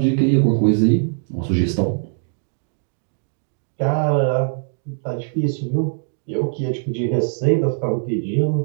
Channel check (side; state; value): left; silent; 65 dB below the other